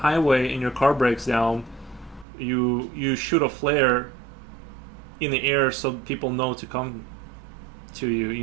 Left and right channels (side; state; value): left; drops out; at 2.2 s